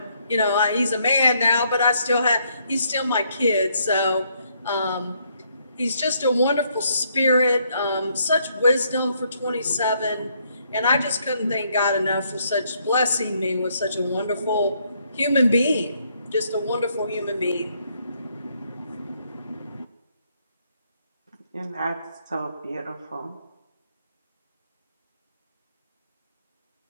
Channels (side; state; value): both; inverted; correlation -0.71